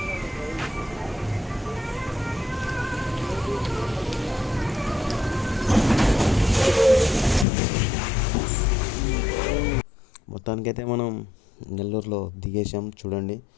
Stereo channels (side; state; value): right; drops out; at 7.5 s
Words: మొత్తానికైతే మనం నెల్లూరులో దిగేసాం. చూడండి,